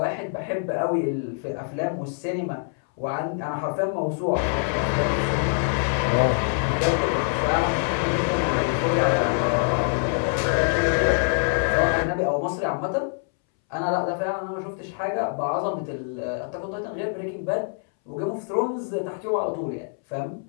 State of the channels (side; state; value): right; silent; 62 dB below the other